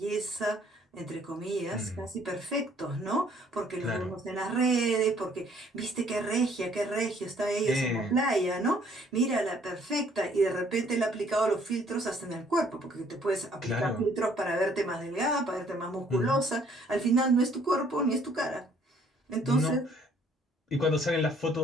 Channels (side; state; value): both; normal; correlation 0.62